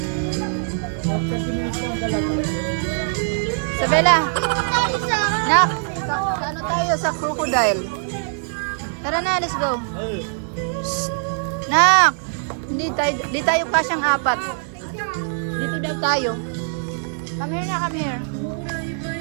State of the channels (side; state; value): left; silent; digital silence